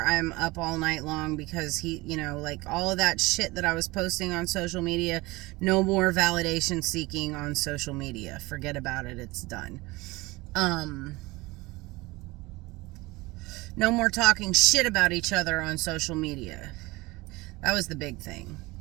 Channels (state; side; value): quieter; left; 22.0 dB